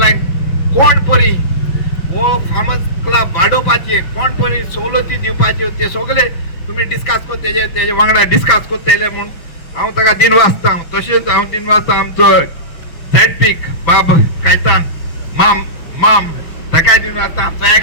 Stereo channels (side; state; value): right; late; 6.0 ms